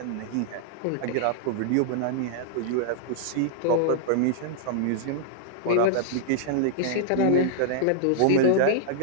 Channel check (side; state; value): both; different; correlation -0.01